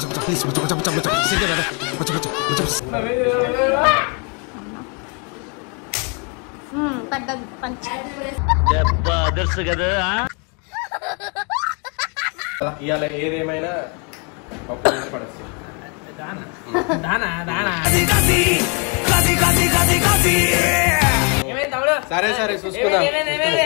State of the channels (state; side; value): quieter; right; 35.0 dB